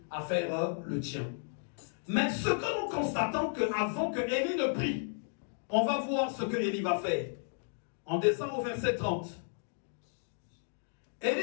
à faire le tien. Mais ce que nous constatons, qu'avant que Élie ne prie, on va voir ce que Élie va faire. On descend au verset 30.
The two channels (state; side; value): silent; right; digital silence